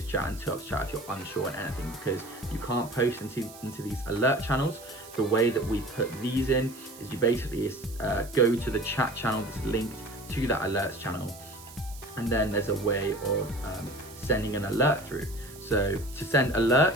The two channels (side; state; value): right; noise; hiss, 18 dB below the sound